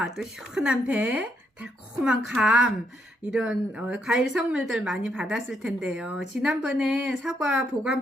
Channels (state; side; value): normal; both; correlation 0.76